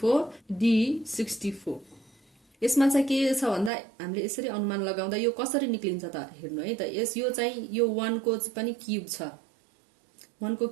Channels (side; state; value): left; drops out; at 3.7 s